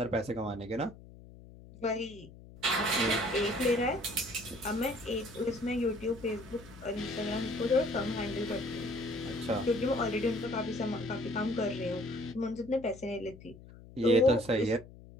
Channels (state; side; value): noise; left; hum, 19 dB below the sound